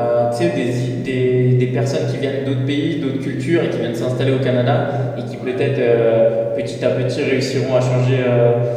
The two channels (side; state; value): both; identical; correlation 1.00